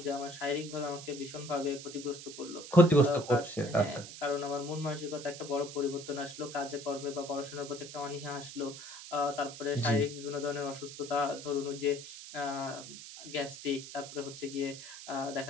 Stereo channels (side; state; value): right; noise; hiss, 12 dB below the sound